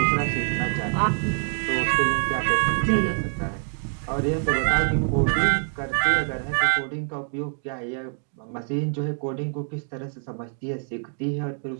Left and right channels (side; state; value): left; silent; 56 dB below the other